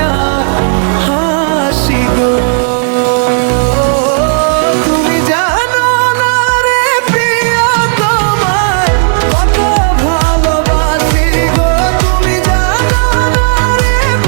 হাসি গো। তুমি জানো না রে প্রিয় তোমায় কত ভালোবাসি গো। তুমি জানো না রে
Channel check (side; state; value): left; silent; digital silence